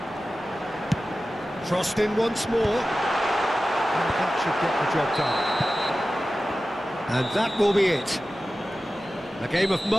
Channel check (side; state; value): both; normal; correlation 0.95